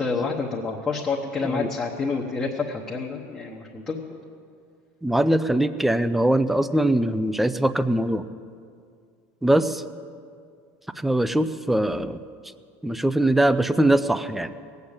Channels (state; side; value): normal; both; correlation 0.87